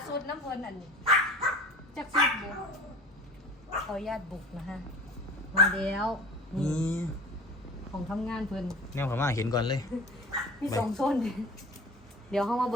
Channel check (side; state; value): both; normal; correlation 0.39